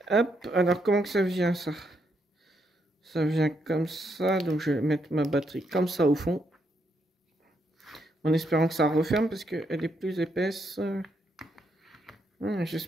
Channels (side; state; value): both; normal; correlation 0.77